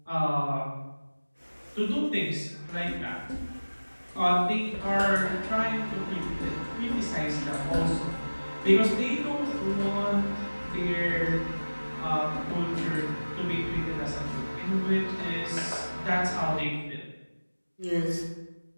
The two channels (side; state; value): both; inverted; correlation -1.00